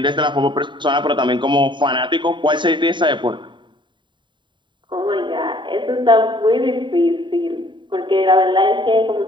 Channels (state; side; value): late; left; 0.23 ms